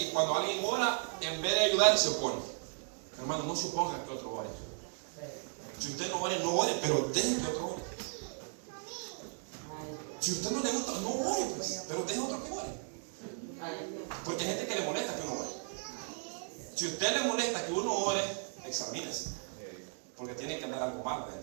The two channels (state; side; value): silent; left; 54 dB below the other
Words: cuando alguien ora, en vez de ayudar, se opone. Hermano, no suponga que otro ore. Si usted no ore, pero deje que otro ore. Si usted no le gusta, no ore, pues, pero deje otro que ore. Porque hay gente que le molesta que uno ore. Si a usted le molesta que uno ore, examínese. Porque tiene que andar algo mal